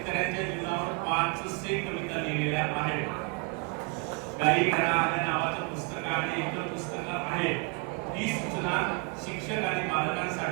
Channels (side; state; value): left; quieter; 31.3 dB